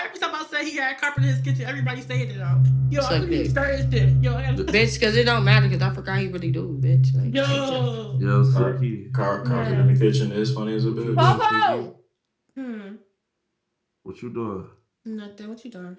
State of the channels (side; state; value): both; identical; correlation 1.00